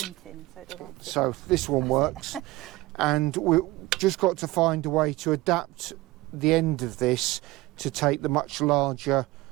in, so it doesn't fit. So this one works. And we've just got to find a way to adapt the end of this to take the much larger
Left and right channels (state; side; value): quieter; left; 19.4 dB